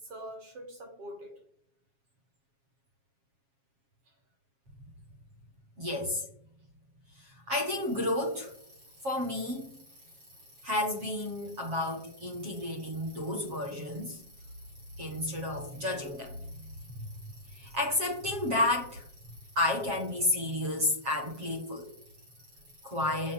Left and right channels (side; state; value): left; late; 7.4 ms